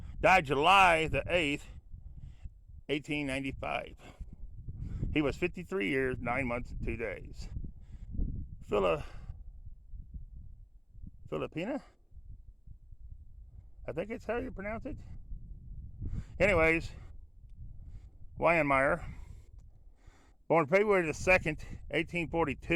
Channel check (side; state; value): both; identical; correlation 1.00